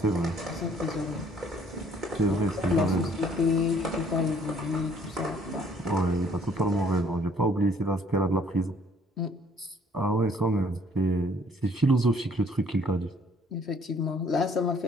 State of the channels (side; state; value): both; normal; correlation 0.60